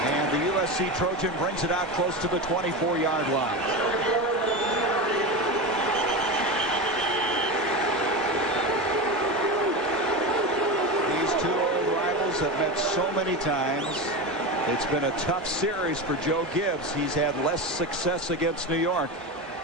And the USC Trojan brings it out close to the 24-yard line. These 2 old rivals have met so many times. It's been a tough series for Joe Gibbs. He's had less success against New York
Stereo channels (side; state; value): both; normal; correlation 0.21